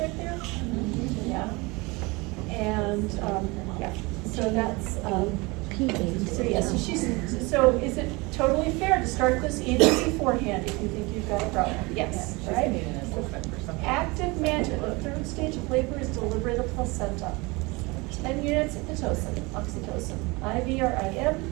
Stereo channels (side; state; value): left; quieter; 25.2 dB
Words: there? Yeah. And, yeah, so that's, so yeah, so is it totally fair to start this even beforehand if you think you've got a problem? Yes, right? Active management, the third stage of labor is delivery of the placenta. 10 units of Pitocin, oxytocin, IV or IM,